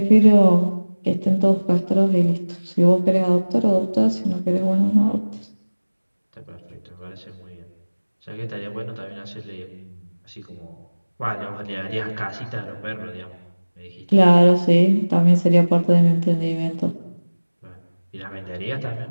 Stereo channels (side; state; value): both; inverted; correlation -1.00